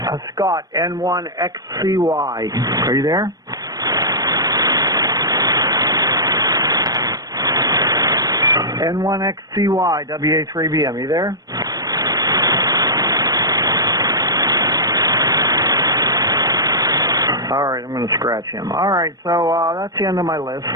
Scott N1XCY. Are you there? N1XCY, WA3BM. Are you there? All right, I'm going to scratch him. All right, so that's the end of my list.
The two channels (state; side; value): late; left; 0.18 ms